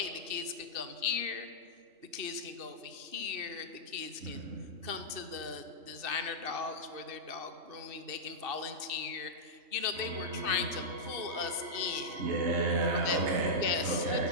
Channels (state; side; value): late; left; 2.7 ms